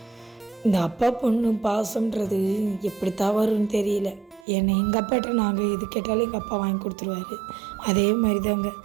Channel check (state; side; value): drops out; left; at 4.5 s